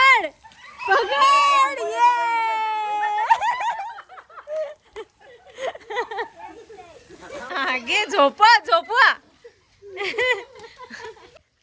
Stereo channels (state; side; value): identical; both; correlation 1.00